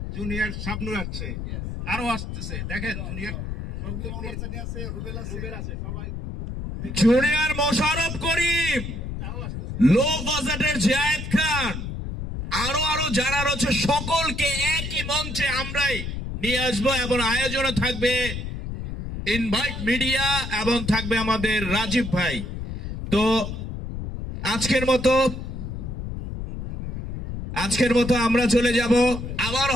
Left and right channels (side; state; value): left; noise; rumble, 6 dB below the sound